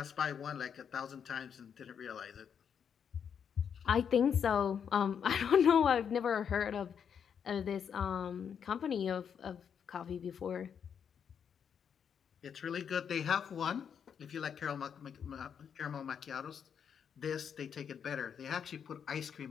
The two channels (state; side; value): quieter; right; 7.6 dB